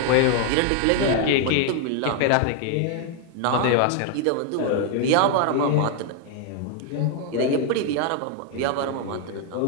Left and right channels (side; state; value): both; different; correlation 0.00